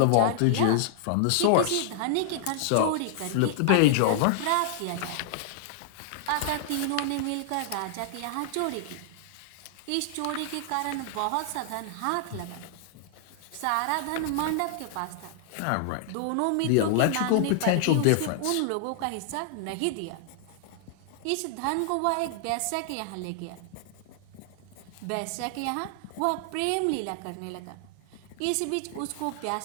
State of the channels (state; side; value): different; both; correlation -0.01